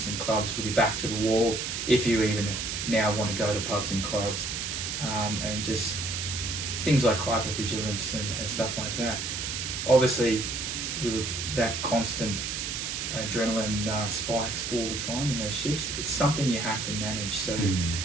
and clubs with your back to the wall, if you even now want to go to pubs and clubs, and just things like hypervigilance and stuff like that. Obviously, with that constant adrenaline spikes all the time in those shifts, it's something you have to manage. So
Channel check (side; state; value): right; noise; hiss, 3 dB below the sound